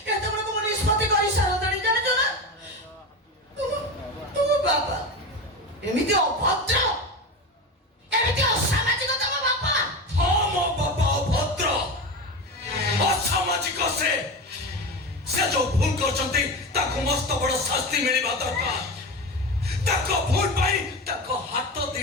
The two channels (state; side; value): normal; both; correlation 0.23